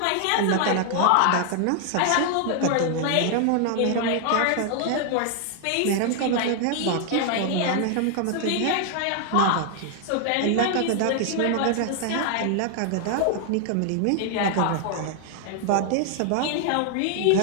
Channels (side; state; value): both; different; correlation 0.00